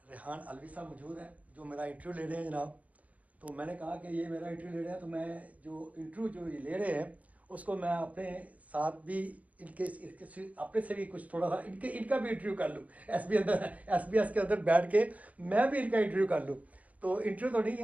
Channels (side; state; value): left; late; 0.070 ms